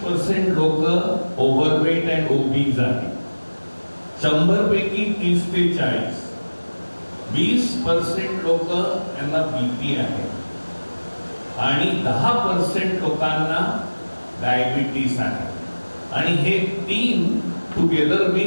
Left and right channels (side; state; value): both; inverted; correlation -1.00